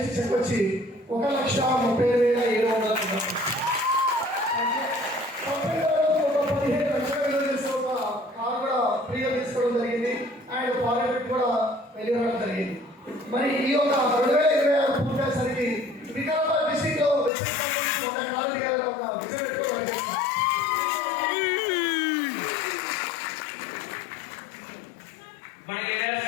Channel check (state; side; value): drops out; right; at 17.3 s